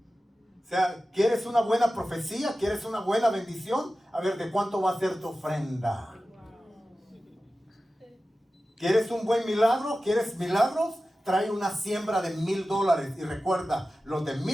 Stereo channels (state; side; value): normal; both; correlation 0.95